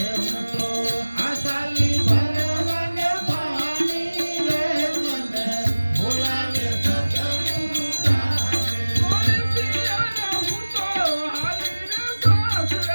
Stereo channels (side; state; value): both; inverted; correlation -1.00